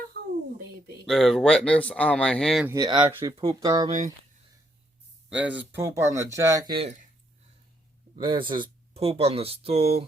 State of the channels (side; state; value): both; normal; correlation 0.74